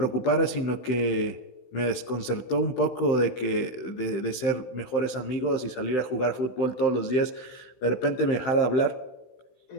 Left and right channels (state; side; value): late; right; 16 ms